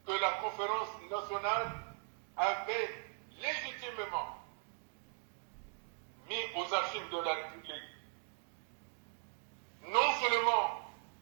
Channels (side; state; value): left; silent; 51 dB below the other